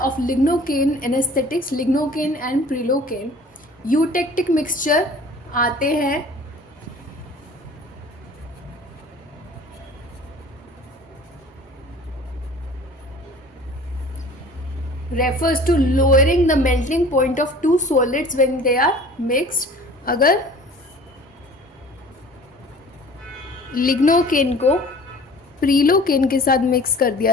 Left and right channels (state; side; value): normal; both; correlation 0.46